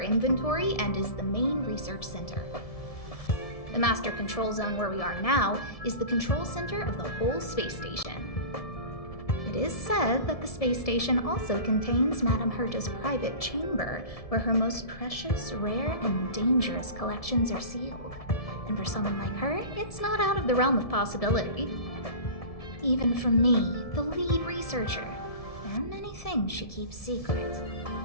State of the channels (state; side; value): late; right; 1.7 ms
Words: inventory and is the main research center. The master control zone where we are now is the control center of the whole space station. It is said that the space station also contains Madame Herta's private chamber, where her most precious, rare, and dangerous collections are sealed. And for someone like her, it's not out of the realm of possibility. Even from me, the lead researcher, there are many things she keeps secret.